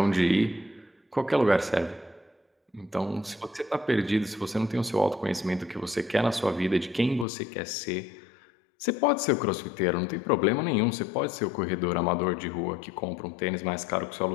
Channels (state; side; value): drops out; right; at 7.2 s